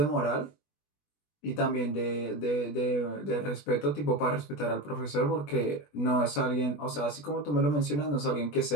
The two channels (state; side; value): late; right; 20 ms